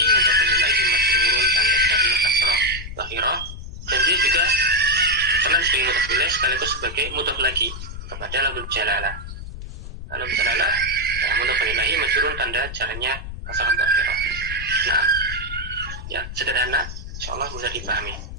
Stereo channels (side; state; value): left; noise; rumble, 10 dB below the sound